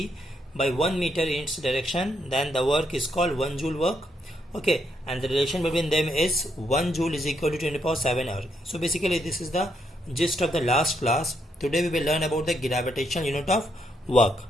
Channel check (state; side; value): normal; both; correlation 0.76